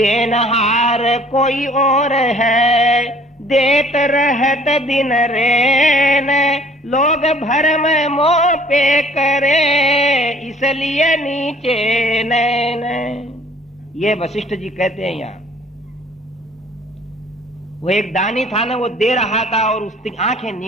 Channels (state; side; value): normal; both; correlation 0.55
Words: कोई और है, देत रहत दिन रेन, लोग भरम मोह पे करे, इसलिए नीचे नैन। ये वशिष्ठ जी कहते हैं यहां वो एक दानी था ना, वो दे रहा था और उसकी आंखें